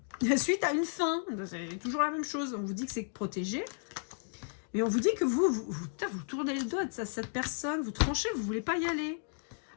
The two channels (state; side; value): silent; right; digital silence